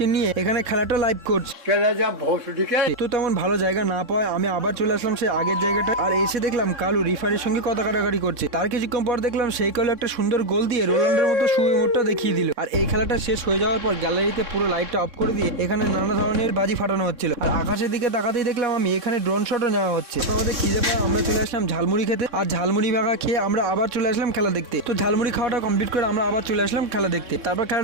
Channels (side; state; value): left; late; 3.6 ms